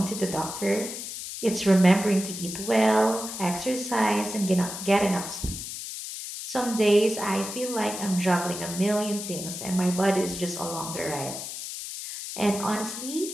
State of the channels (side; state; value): left; noise; hiss, 8 dB below the sound